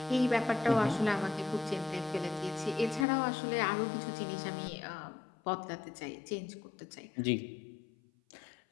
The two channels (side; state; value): right; drops out; at 3.1 s